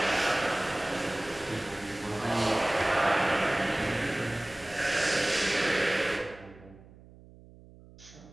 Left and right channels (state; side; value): noise; right; hum, 22 dB below the sound